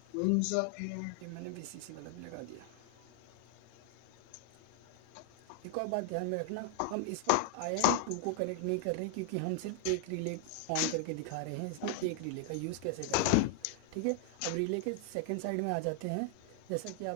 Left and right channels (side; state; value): both; different; correlation 0.00